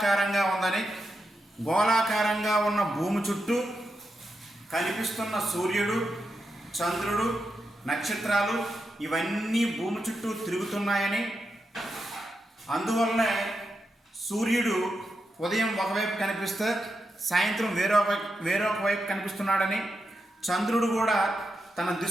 ఉందని, గోళాకారంగా ఉన్న భూమి చుట్టూ కనిపిస్తున్న సూర్యుడు, చంద్రుడు, నక్షత్రాలు ఇవన్నీ భూమి చుట్టూ తిరుగుతున్నాయని, అందువల్లనే సూర్యుడు ఉదయం ఒకవైపు కనిపిస్తే సాయంత్రం వేరొక వైపు కనిపిస్తున్నాడని, చంద్రుడు కూడా తన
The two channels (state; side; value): normal; both; correlation 0.87